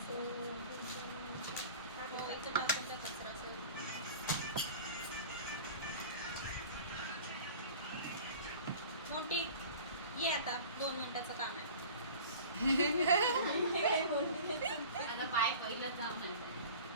मोबाईलचं टाकायचा कचरा असेल मोठी ये आता 2 मिनिटाचं काम आहे आता पाय पहिलं जाऊ नाही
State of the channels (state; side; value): inverted; both; correlation -0.41